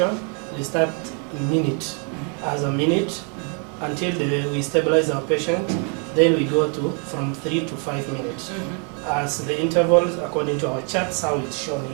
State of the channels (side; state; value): left; quieter; 38.5 dB